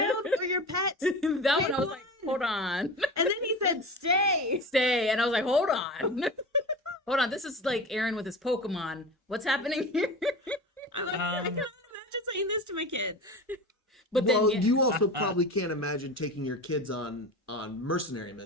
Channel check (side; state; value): both; normal; correlation 0.31